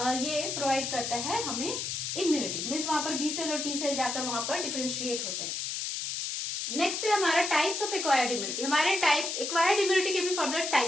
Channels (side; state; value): left; noise; hiss, 3 dB below the sound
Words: ये प्रोवाइड करता है हमें इम्यूनिटी, मीन्स वहां पर बी सेल और टी सेल जाकर वहां पर डिफरेंशिएट होते हैं। नेक्स्ट है हमारा टाइप्स ऑफ एक्वायर्ड इम्यूनिटी। हमारे टाइप एक्वायर्ड इम्यूनिटी के भी फर्दर